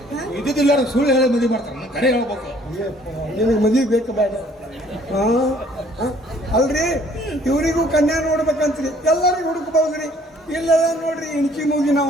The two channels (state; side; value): normal; both; correlation 0.59